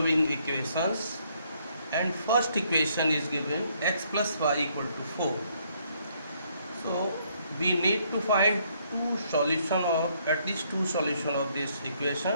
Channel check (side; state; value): both; inverted; correlation -0.69